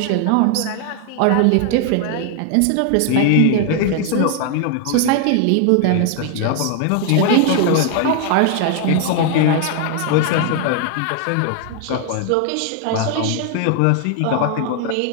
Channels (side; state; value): both; different; correlation 0.00